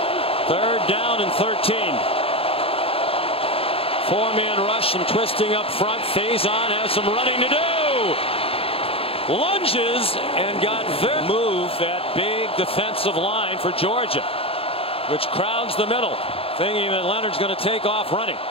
3rd down and 13. Four-man rush and twisting up front. Faison has some running to do. Lunges and got very move that big defensive line for Georgia, which crowds the middle, thinking that Leonard's going to take off running.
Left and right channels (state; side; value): late; right; 0.27 ms